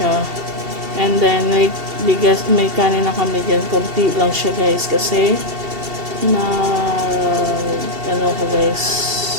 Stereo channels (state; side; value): late; left; 2.7 ms